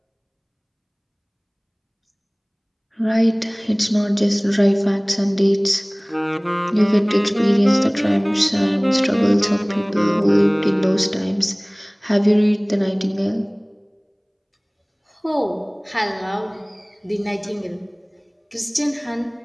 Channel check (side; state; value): both; identical; correlation 1.00